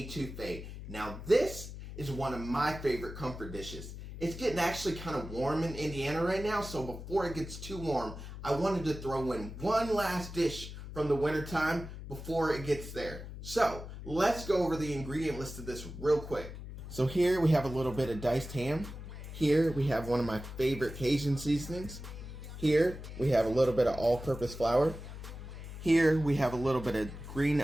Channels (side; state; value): left; noise; hum, 11 dB below the sound